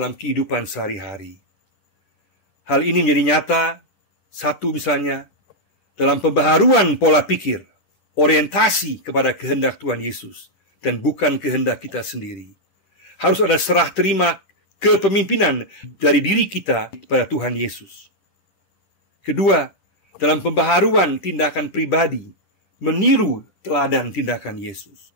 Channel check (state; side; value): late; right; 10 ms